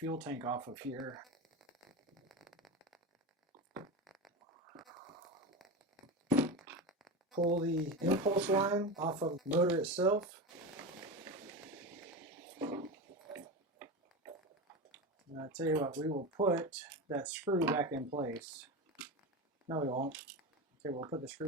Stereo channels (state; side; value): normal; both; correlation 0.21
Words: tank off of here. Pull the impulse line off of the motor itself. And I'll tell you what, we will put that screw back in place. No, we won't. Okay, we'll put the